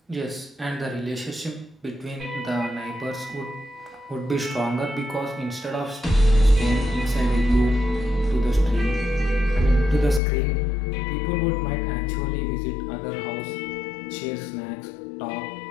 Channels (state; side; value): drops out; right; at 10.2 s